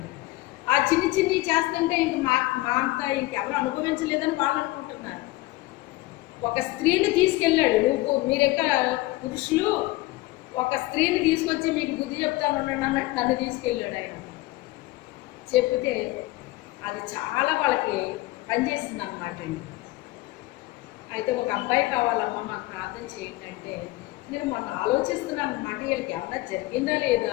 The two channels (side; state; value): right; quieter; 19.2 dB